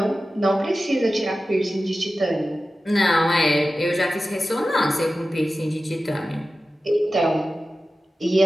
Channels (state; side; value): normal; both; correlation 0.94